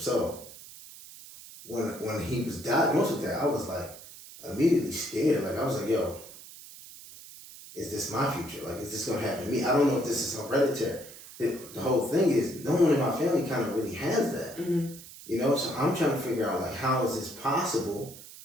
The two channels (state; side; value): noise; right; hiss, 17 dB below the sound